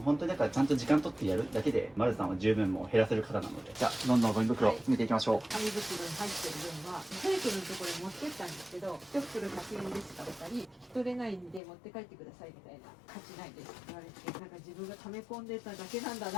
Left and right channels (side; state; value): right; drops out; at 11.6 s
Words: う本当にだからちゃんと時間取ってやるだけで、丸さんは十分もう減らせる方なので、じゃあ、どんどんゴミ袋詰めていきましょう。紙袋に入ってる分は、サイクルのところに持ってったんですけど、一袋100円ですかったり、引き取れないんで持って帰ってくださいみたいな、価値ないですって言われて、なんか自分が溜め込んでただけなんだ